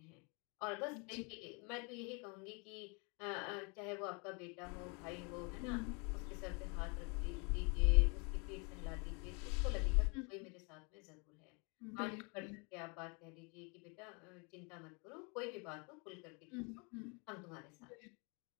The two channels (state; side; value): quieter; right; 32.8 dB